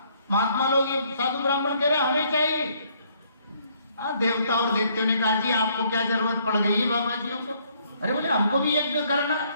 महात्मा लोग ये साधु ब्राह्मण कह रहे हमें चाहिए। हाँ, देवता और देवतियों ने कहा जी आपको क्या जरूरत पड़ गई है बाबा जी को। अरे बोले हमको भी यज्ञ करना,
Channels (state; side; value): inverted; both; correlation -0.66